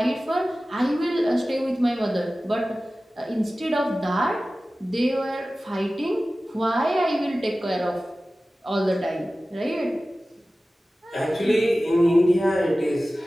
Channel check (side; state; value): both; normal; correlation 0.96